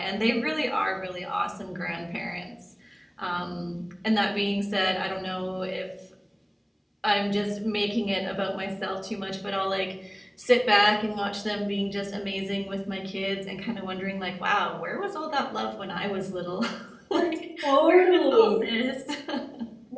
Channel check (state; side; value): identical; both; correlation 1.00